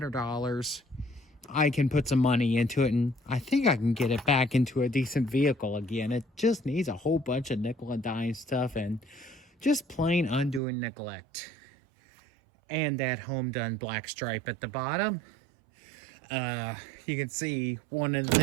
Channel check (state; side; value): drops out; left; at 10.6 s